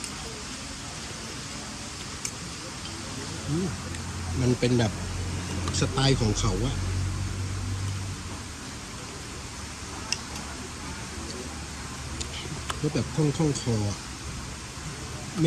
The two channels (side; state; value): both; identical; correlation 1.00